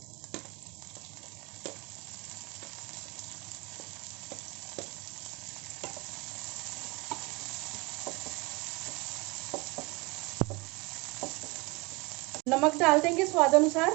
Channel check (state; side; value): quieter; left; 26.3 dB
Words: नमक डाल देंगे स्वाद अनुसार।